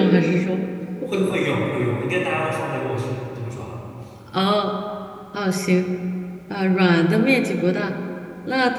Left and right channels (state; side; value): identical; both; correlation 1.00